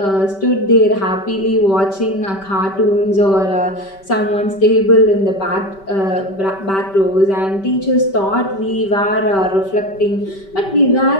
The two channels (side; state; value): right; late; 5.2 ms